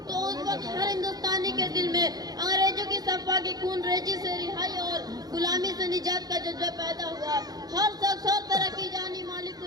तो उस वक्त हर हिंदुस्तानी के दिल में अंग्रेजों की सफा की खून रेजी से रिहाई और गुलामी से निजात का जज्बा पैदा हुआ। हर शख्स हर तरह की जानी माली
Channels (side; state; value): left; late; 0.19 ms